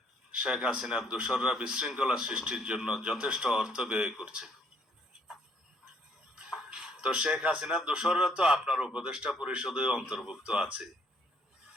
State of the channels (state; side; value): normal; both; correlation 0.65